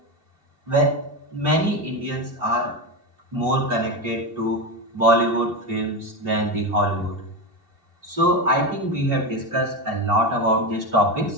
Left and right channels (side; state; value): left; late; 2.7 ms